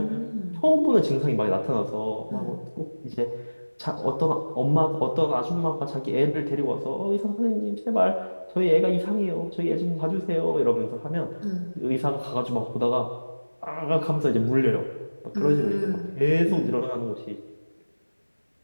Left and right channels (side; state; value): both; inverted; correlation -1.00